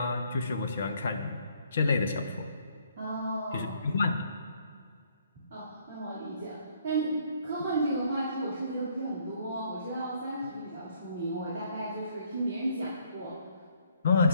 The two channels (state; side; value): inverted; both; correlation -0.66